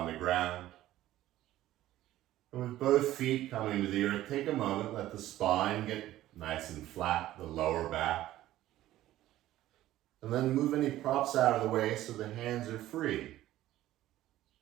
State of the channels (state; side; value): quieter; left; 14.5 dB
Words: the ground. And with both feet coming to the earth, take a moment, let the spine get nice and flat, the lower back. And then move any props out of the way so the hands are free.